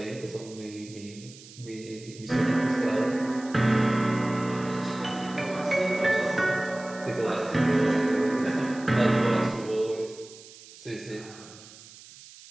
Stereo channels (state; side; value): noise; right; hiss, 19 dB below the sound